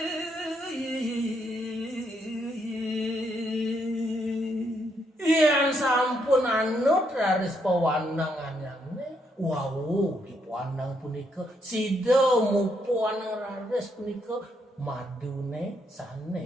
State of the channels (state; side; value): normal; both; correlation 0.76